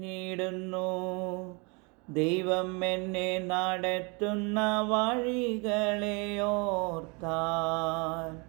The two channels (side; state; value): left; quieter; 31.0 dB